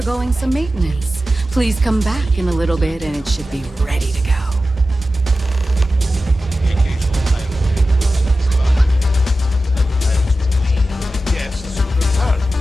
some maintenance. Please come back in a little bit and it should be ready to go.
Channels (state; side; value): normal; both; correlation 0.93